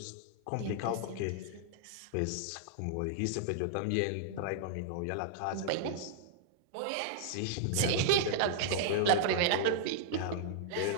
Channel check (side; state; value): both; different; correlation -0.01